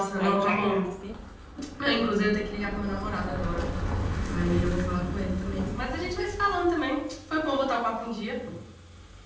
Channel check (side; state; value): both; identical; correlation 1.00